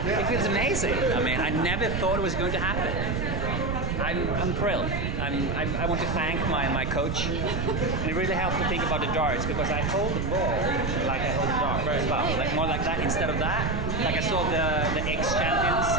It feels amazing. I mean, I never thought it was going to happen. I'm thrilled. I want to thank my coach. And it really helped to think about the darts, because I hold the ball like I hold the dart as well. Like more like that instead of that. Like I saw the ex-champions,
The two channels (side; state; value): right; noise; rumble, 1 dB below the sound